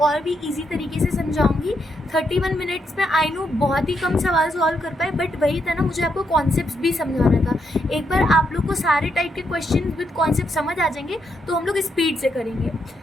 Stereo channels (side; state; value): both; normal; correlation 0.79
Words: और भी इजी तरीके से समझाऊंगी। 31 मिनट्स में आई नो बहुत ही कम सवाल सॉल्व कर पाए, बट वही था ना, मुझे आपको कॉन्सेप्ट्स भी समझाना था। एक बार आप लोग को सारे टाइप के क्वेश्चन विद कॉन्सेप्ट समझ आ जाएंगे तो हम लोग स्पीड से करेंगे।